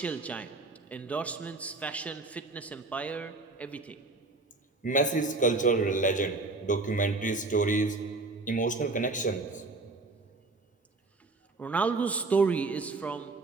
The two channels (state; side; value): quieter; left; 3.4 dB